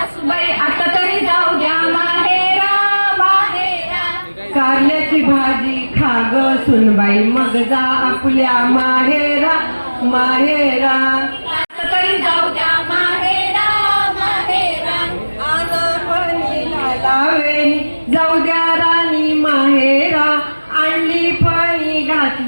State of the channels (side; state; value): both; inverted; correlation -1.00